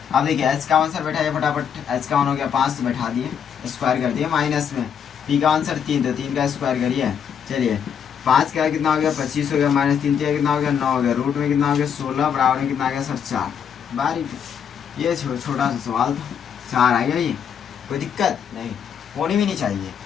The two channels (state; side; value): quieter; right; 7.9 dB